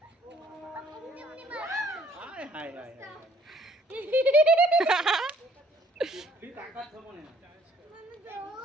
હાય હાય હાય ફી તાકાત છે મને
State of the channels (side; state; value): both; normal; correlation 0.61